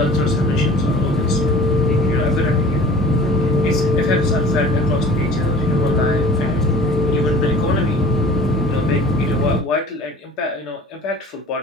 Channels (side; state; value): both; normal; correlation 0.44